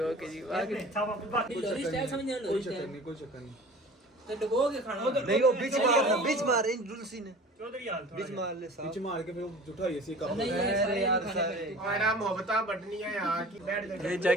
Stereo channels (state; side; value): normal; both; correlation 0.42